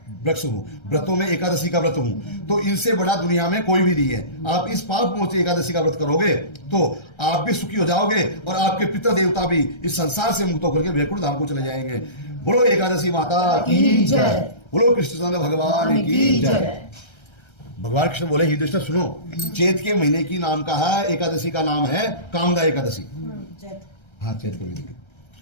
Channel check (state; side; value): late; right; 1.3 ms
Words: वृक्ष हूं, व्रतों में एकादशी का व्रत हूं, तो इनसे बड़ा दुनिया में कोई भी नहीं है। आप इस पाप मोचनी एकादशी का व्रत करोगे तो आप भी सुखी हो जाओगे और आपके पितर देवता भी इस संसार से मुक्त होकर के वैकुंठ धाम को चले जाएंगे। बोलो एकादशी माता की जय, बोलो कृष्णचंद्र भगवान की जय। भगवान कृष्ण बोले युधिष्ठिर सुनो, चैत के महीने की नाम का है, एकादशी का नाम है कामदा एकादशी। हाँ, चैत के महीने